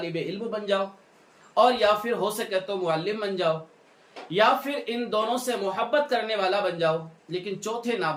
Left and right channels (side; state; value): both; identical; correlation 1.00